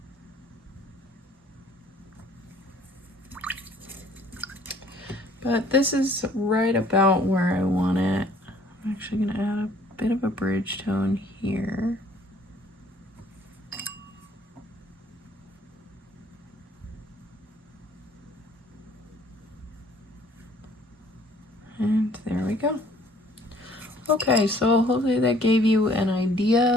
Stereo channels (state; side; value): normal; both; correlation 0.58